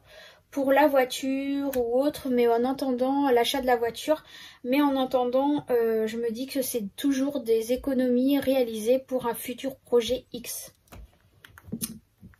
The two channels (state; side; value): identical; both; correlation 1.00